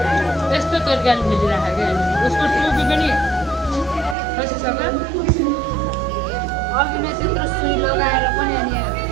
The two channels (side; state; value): left; drops out; at 4.2 s